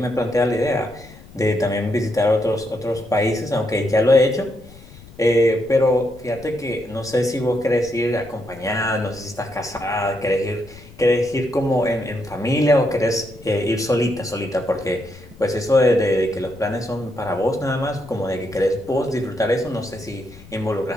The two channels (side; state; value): left; noise; rumble, 20 dB below the sound